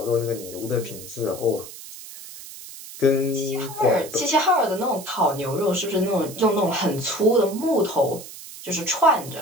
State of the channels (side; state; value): right; noise; hiss, 14 dB below the sound